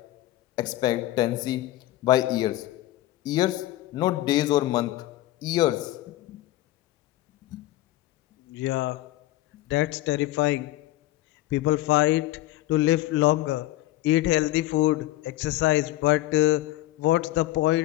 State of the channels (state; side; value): quieter; right; 16.1 dB